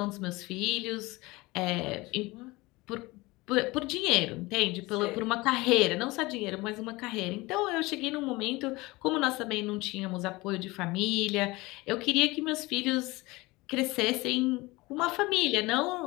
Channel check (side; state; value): right; quieter; 22.0 dB